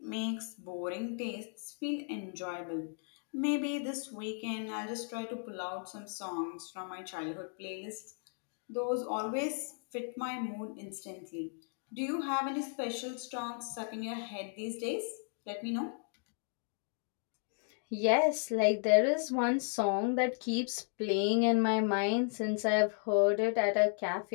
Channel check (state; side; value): silent; right; 54 dB below the other